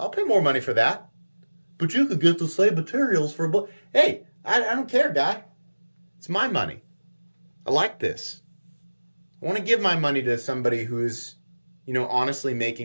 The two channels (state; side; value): inverted; both; correlation -1.00